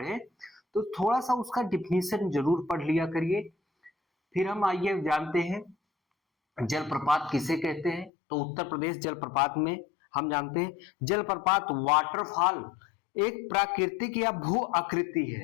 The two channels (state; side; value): drops out; right; at 8.1 s